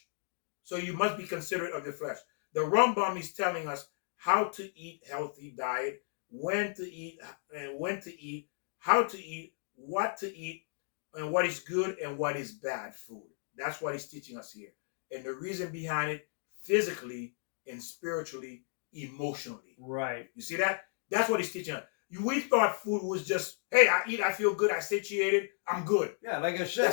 So you must be considerate of your flesh. The Rambam is telling us how to eat healthy diet, when to eat, and when to eat, how to eat, what to eat, and what is good and what is bad food. That's what he's teaching us here. And the reason behind it, physically and spiritually, emotionally. right. You see that? That's what he's teaching us. We thought food was just, hey, I eat, I feel good, I satiated, I'm good. Yeah, like I said,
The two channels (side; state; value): right; silent; digital silence